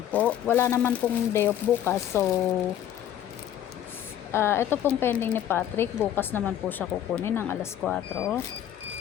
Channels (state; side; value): quieter; right; 10.9 dB